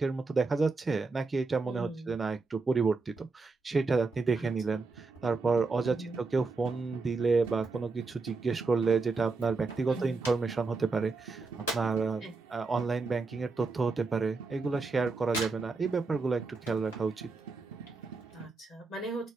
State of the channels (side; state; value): left; quieter; 4.1 dB